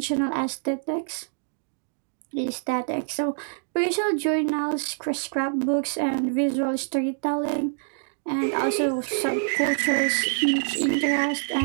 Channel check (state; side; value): silent; left; digital silence